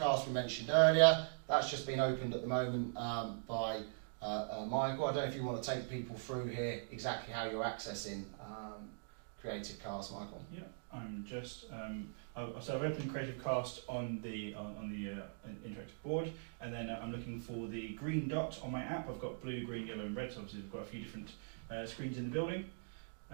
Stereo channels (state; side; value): silent; left; digital silence